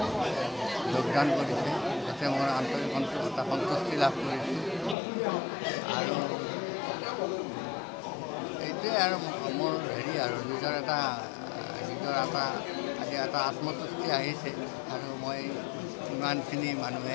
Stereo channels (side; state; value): right; drops out; at 5.0 s